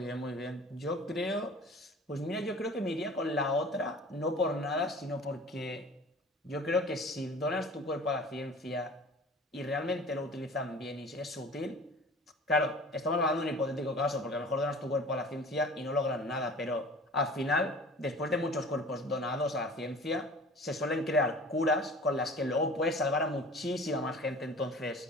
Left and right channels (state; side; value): normal; both; correlation 0.43